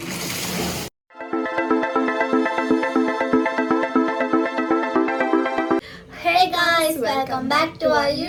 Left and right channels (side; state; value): both; identical; correlation 1.00